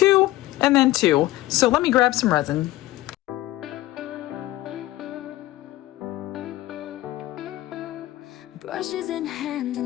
and then 2. So let me grab some resin. Brushes in hand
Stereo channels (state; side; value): quieter; right; 16.6 dB